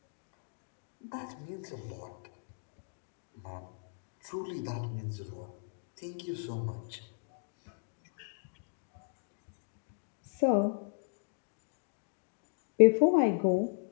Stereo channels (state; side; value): silent; right; digital silence